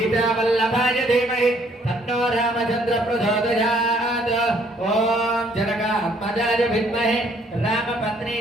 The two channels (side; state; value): both; normal; correlation 0.64